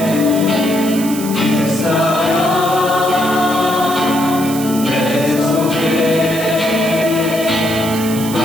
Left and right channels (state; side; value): noise; right; hiss, 10 dB below the sound